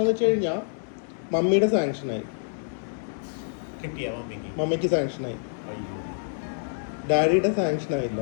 വെച്ച് കഴിഞ്ഞാൽ മമ്മിയുടെ സാങ്ഷനായി. മമ്മിക്ക് സാങ്ഷനായി, ഡാഡിയുടെ സാങ്ഷൻ ആയില്ല.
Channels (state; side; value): silent; right; digital silence